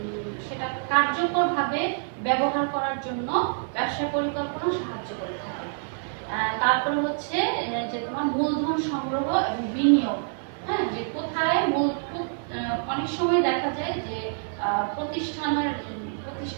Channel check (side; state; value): left; silent; 57 dB below the other